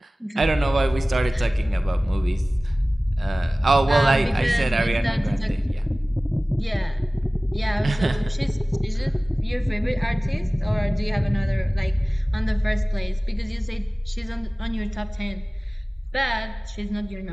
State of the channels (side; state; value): both; normal; correlation 0.98